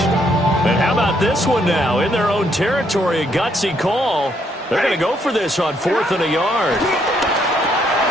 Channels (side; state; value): both; normal; correlation 0.72